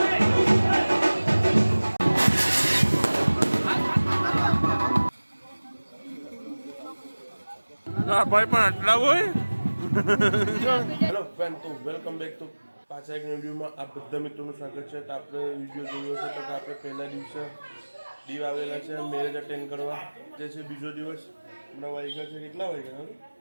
ભાઈ પણ આટલા હોય. હેલો ફ્રેન્ડ, તો વેલકમ બેક ટુ પાછા એક વિડીયોમાં આ બધા મિત્રોનું સ્વાગત છે. તો આપણે વિડીયો જોયો છે તો આપણે પહેલા દિવસે દીવ આવેલા છે મેરેજ અટેન્ડ કરવા, જે છે બીજો દિવસ. હમણાં વાગ્યા છે કેટલા વાગ્યા?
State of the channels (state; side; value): inverted; both; correlation -1.00